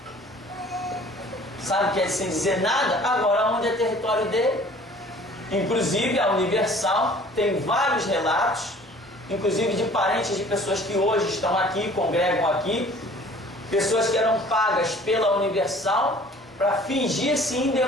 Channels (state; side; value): normal; both; correlation 0.50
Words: Sabe o que é sem dizer nada? Agora, onde é território dele? Inclusive, a Universal tem vários relatos, inclusive de parentes de pessoas que hoje estão aqui, congregam aqui, pessoas que eram pagas pela Universal para fingir-se